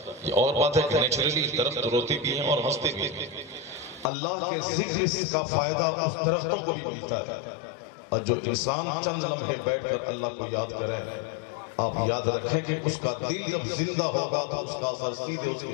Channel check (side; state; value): right; drops out; at 4.0 s